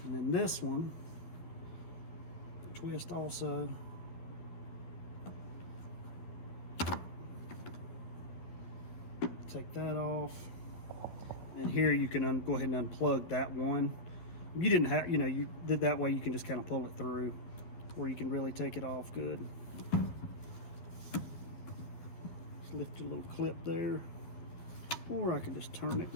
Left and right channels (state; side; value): late; right; 12 ms